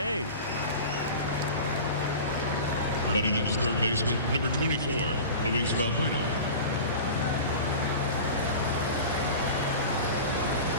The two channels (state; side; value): inverted; both; correlation -0.34